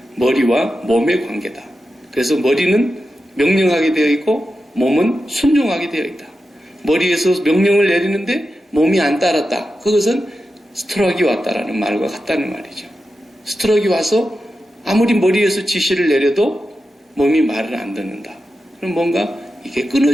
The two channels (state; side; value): normal; both; correlation 0.90